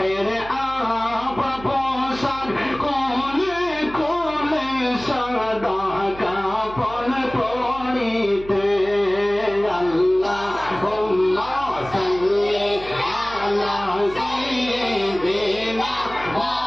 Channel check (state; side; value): noise; right; hum, 17 dB below the sound